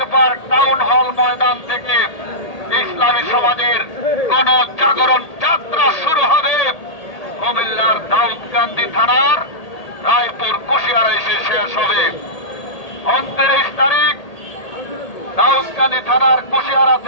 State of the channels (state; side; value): late; right; 1.8 ms